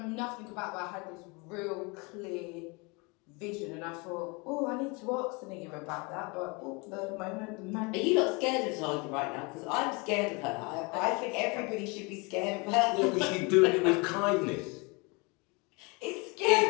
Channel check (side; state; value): right; quieter; 28.9 dB